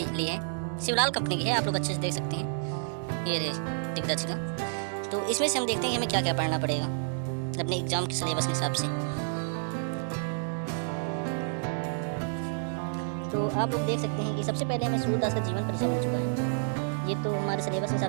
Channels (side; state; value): left; silent; digital silence